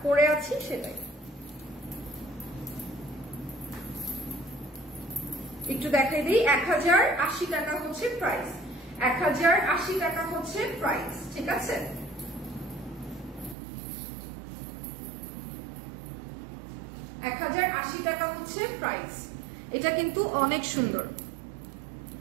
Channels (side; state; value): left; drops out; at 13.6 s